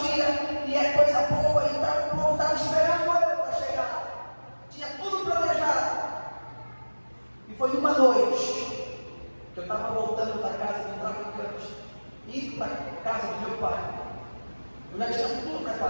e é coisa boa e tal. O povo estava esperando eu para chegar. Tinha tudo planejado. E foi numa noite que eu estava voltando da casa do traficante, indo para a casa do meu pai. Eu já tinha tudo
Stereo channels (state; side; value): inverted; both; correlation -1.00